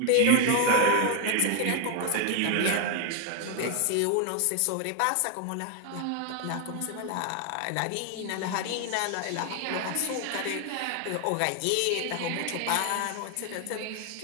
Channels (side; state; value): both; different; correlation 0.01